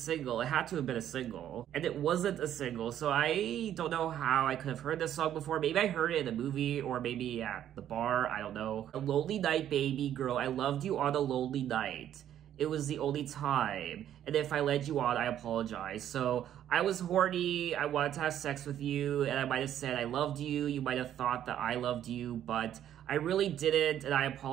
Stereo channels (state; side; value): quieter; left; 10.9 dB